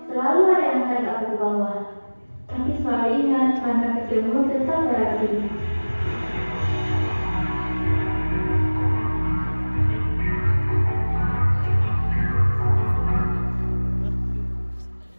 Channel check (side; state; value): both; inverted; correlation -1.00